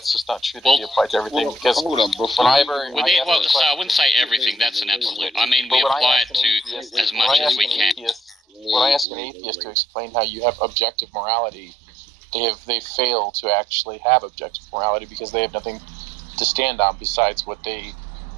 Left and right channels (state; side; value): drops out; left; at 9.1 s